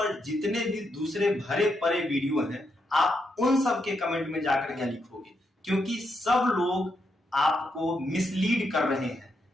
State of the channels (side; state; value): both; normal; correlation 0.81